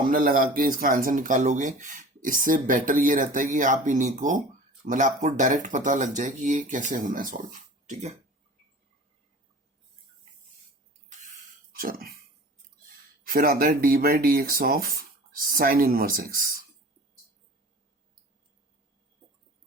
लगा के इसका आंसर निकालोगे, इससे बेटर ये रहता है कि आप इन्हीं को, मतलब आपको डायरेक्ट पता लग जाए कि ये कैसे होना है सॉल्व. ठीक है. चलो. फिर आता है d by d x of sine inverse x.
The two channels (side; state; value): both; normal; correlation 0.42